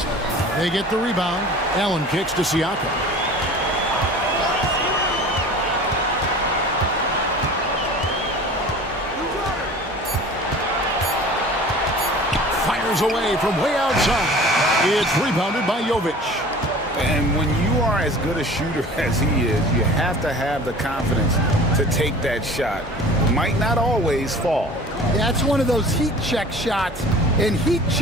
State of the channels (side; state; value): both; normal; correlation 0.42